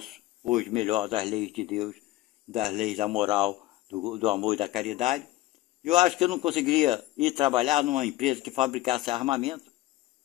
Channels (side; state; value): right; quieter; 17.1 dB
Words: hoje melhor, das leis de Deus, das leis da moral, do amor e da caridade, eu acho que eu não conseguiria ir trabalhar numa empresa que fabricasse armamento